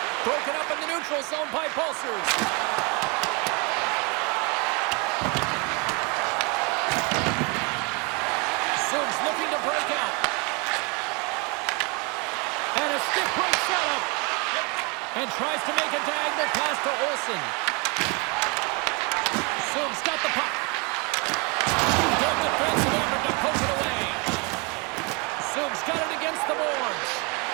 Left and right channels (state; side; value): quieter; left; 31.0 dB